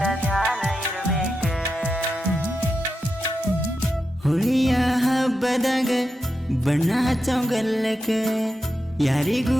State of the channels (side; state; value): both; normal; correlation 0.88